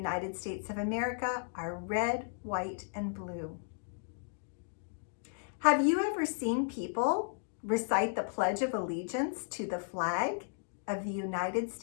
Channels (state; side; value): silent; right; digital silence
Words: States of America are red, white, and blue. Have you ever seen people recite the Pledge of Allegiance to the flag of the United